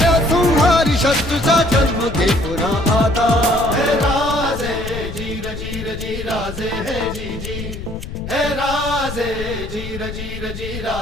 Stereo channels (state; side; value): noise; left; rumble, 9 dB below the sound